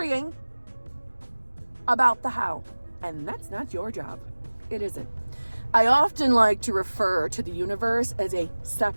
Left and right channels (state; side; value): inverted; both; correlation -1.00